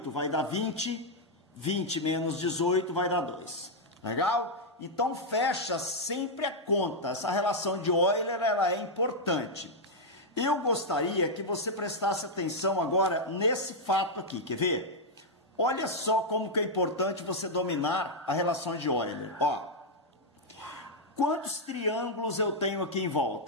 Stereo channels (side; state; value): both; normal; correlation -0.03